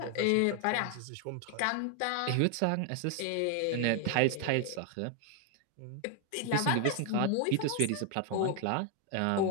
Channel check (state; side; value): different; both; correlation 0.00